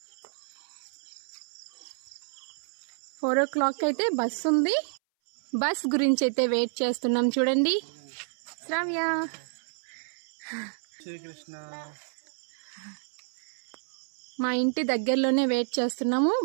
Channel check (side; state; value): left; silent; 58 dB below the other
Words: 4 o'clock అయితే బస్ ఉంది. బస్ గురించి అయితే వెయిట్ చేస్తున్నాం. చూడండి శ్రావ్య, మా ఇంటి దగ్గరలోనే వెయిట్ చేస్తున్నాము.